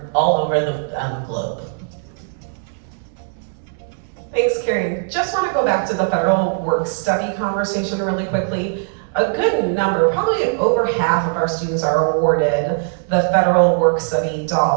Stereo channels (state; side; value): silent; left; digital silence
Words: all over the globe. Thanks, Karen. Just want to go back to the federal work study conversation really quickly. A good number, probably over half of our students are awarded the federal work study